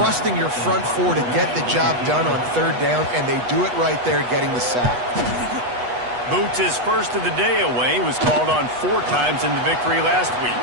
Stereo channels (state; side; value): late; left; 8.2 ms